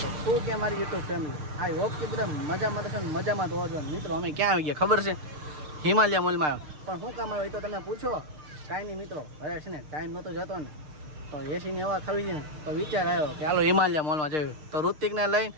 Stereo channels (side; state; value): left; late; 6.6 ms